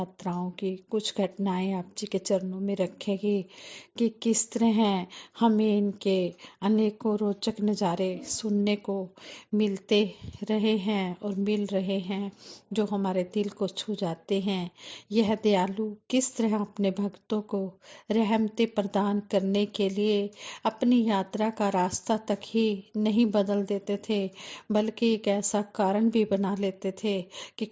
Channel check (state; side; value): identical; both; correlation 1.00